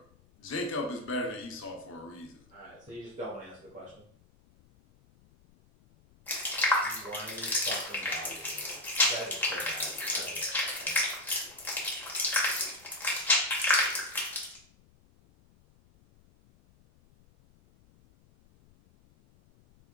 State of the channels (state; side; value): noise; left; rumble, 29 dB below the sound